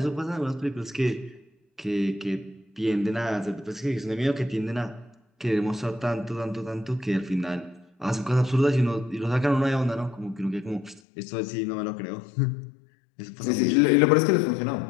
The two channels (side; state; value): right; drops out; at 11.0 s